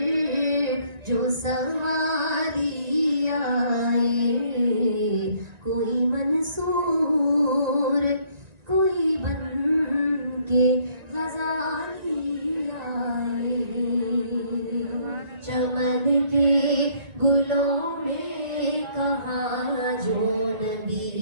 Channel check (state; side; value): late; left; 1.9 ms